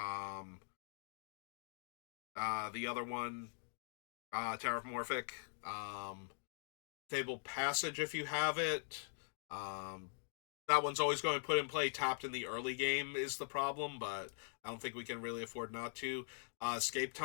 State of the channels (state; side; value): silent; right; digital silence